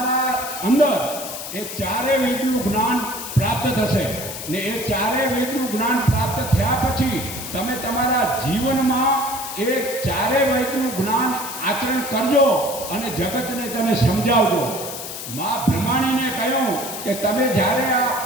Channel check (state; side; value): noise; left; hiss, 8 dB below the sound